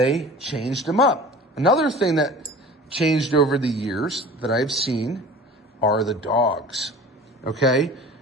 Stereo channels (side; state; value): both; normal; correlation 0.41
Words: changed them up. Another thing that changed over the years that I've seen are the dogs, okay?